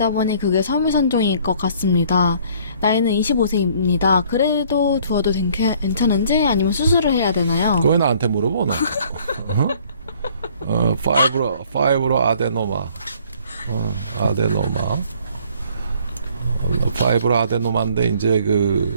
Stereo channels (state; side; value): inverted; both; correlation -0.58